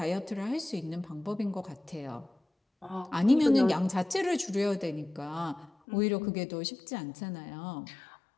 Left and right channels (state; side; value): drops out; right; at 5.7 s